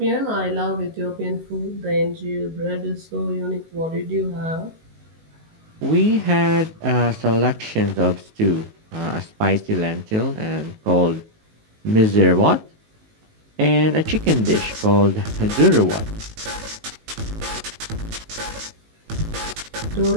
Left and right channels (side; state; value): left; late; 19 ms